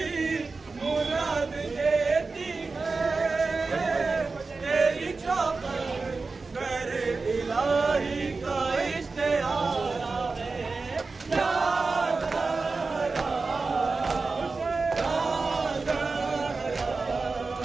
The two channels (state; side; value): quieter; left; 4.0 dB